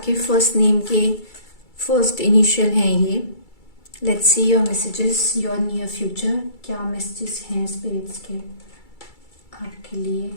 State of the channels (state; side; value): late; right; 2.3 ms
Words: फर्स्ट नेम के फर्स्ट इनिशियल हैं ये, let's see your messages, your near future. क्या मैसेजेस हैं स्पिरिट्स के आपके लिए?